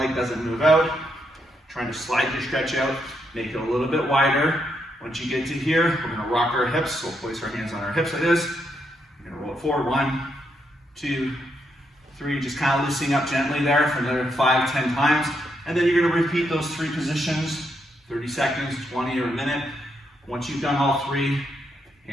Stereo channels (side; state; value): both; normal; correlation 0.79